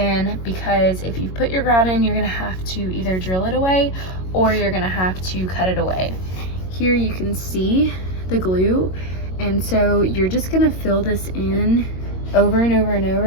because if you put your grout in, you're gonna have to either drill it away or you're gonna have to cut it away. Here you can see the glue, and so you're just gonna fill this in over and over and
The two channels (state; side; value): late; right; 22 ms